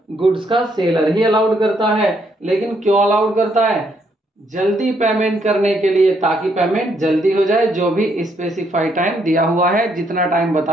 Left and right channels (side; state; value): both; normal; correlation 0.73